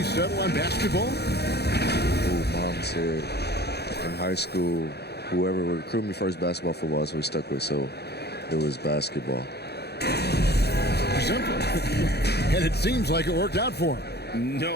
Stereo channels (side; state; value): right; late; 0.48 ms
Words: settle on basketball? Mom said in high school, whoever would recruit me first, basketball, football, that's what we stuck with. So, it was basketball. Simple. And it seems like it worked out for him.